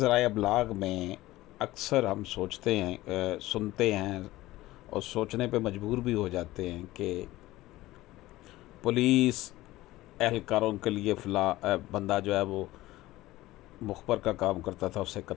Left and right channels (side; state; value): right; quieter; 17.2 dB